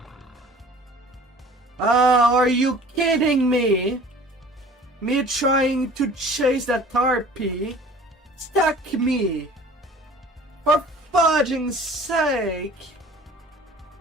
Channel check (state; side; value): normal; both; correlation 0.47